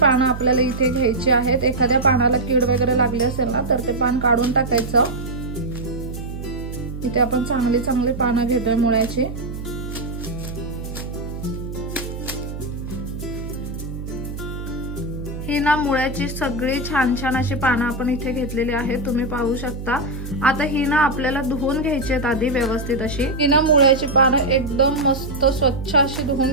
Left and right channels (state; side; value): noise; right; hum, 8 dB below the sound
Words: आपल्याला इथे घ्यायची आहेत। एखाद्या पानाला कीड वगैरे लागली असेल ना, तर ते पान काढून टाकायचं। इथे आपण चांगली पानं घेतोय मुळ्याची। ही ना मुळ्याची सगळी छान अशी पानं आपण इथे घेतलेली आहेत, तुम्ही पाहू शकता। आता ही ना आपल्याला धुवून घ्यायची आहेत आधी व्यवस्थित अशी। ही ना मुळ्याची पानं एकदम मस्त स्वच्छ अशी